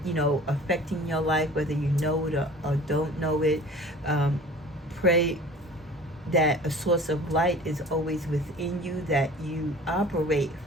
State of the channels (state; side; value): normal; both; correlation 0.44